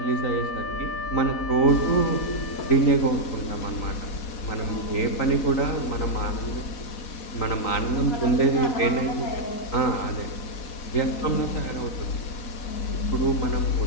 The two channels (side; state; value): right; late; 4.2 ms